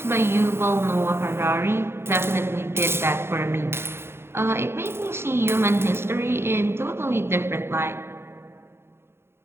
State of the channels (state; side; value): late; left; 0.12 ms